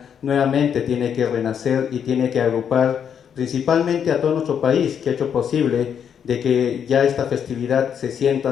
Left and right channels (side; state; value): right; quieter; 8.1 dB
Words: nuevamente tiene que renacer y tiene que agrupar principalmente a todo nuestro país, que ha hecho posible de que ya esta festividad se sienta